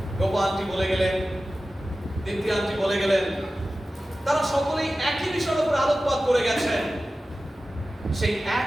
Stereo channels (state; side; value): normal; both; correlation 0.95